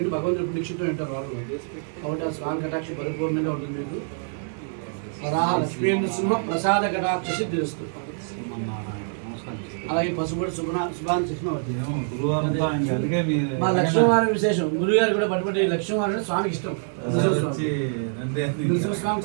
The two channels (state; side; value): silent; left; digital silence